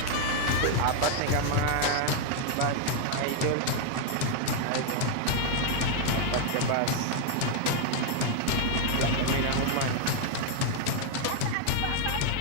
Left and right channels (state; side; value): different; both; correlation 0.00